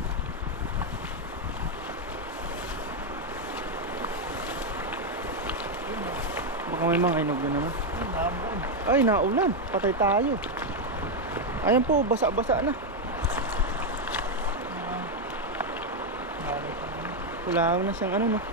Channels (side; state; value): both; normal; correlation 0.03